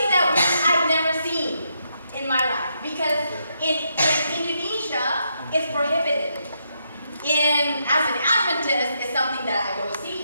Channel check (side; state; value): both; inverted; correlation -0.79